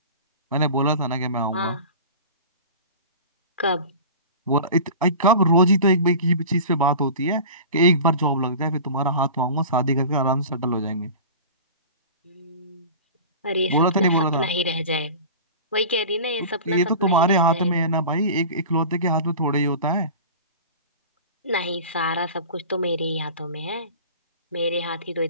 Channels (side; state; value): both; inverted; correlation -0.37